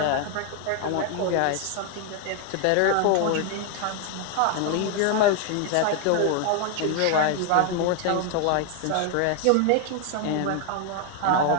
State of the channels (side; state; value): both; different; correlation 0.01